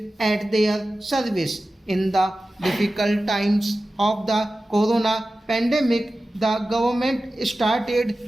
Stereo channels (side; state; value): both; normal; correlation 0.95